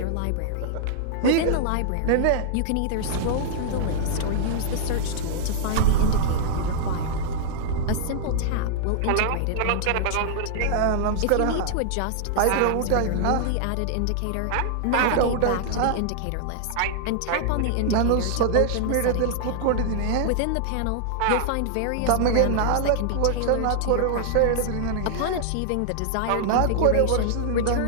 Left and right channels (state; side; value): different; both; correlation -0.01